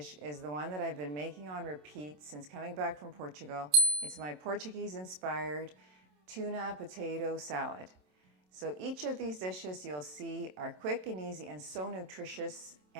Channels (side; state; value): left; late; 27 ms